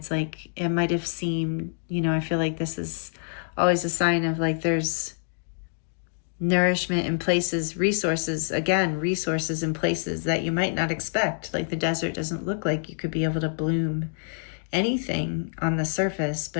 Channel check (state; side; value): silent; right; digital silence